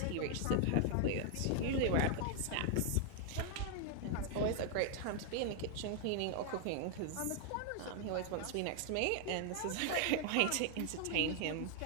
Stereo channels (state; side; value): different; both; correlation 0.00